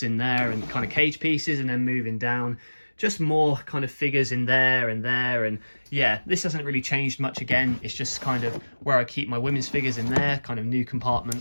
in there and kind of cage pieces, and then moving down, just more kind of figures in there and there. And yeah, this hasn't really changed much again. It's just kind of where I keep my women's figures in there, kind of new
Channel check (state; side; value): inverted; both; correlation -1.00